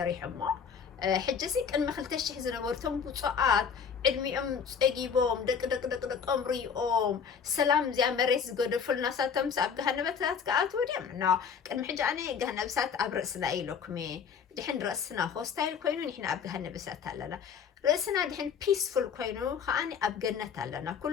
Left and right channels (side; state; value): right; quieter; 6.8 dB